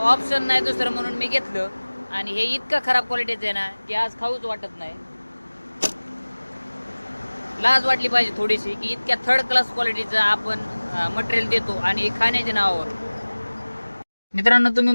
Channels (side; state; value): both; inverted; correlation -1.00